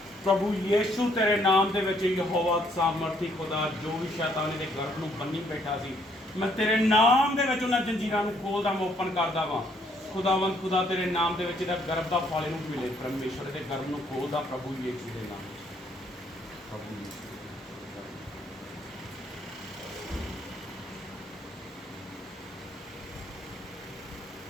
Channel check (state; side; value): normal; both; correlation 0.68